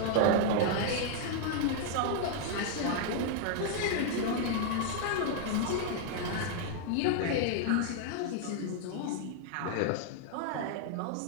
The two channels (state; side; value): different; both; correlation 0.00